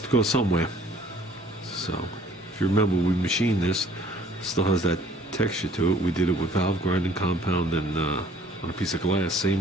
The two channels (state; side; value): normal; both; correlation 0.56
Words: to go somewhere. So, if you remember, we machined this. It still has that texture to it. We did it with valve grinding compound and on a piece of glass.